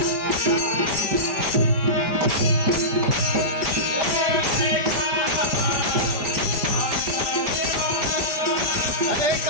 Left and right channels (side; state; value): left; late; 5.0 ms